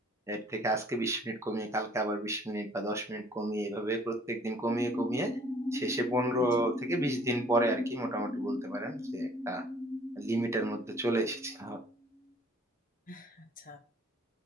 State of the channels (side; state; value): both; normal; correlation 0.56